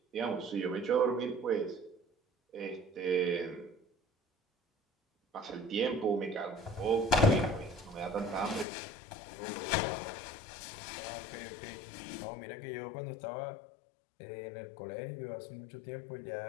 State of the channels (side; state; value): right; drops out; at 8.7 s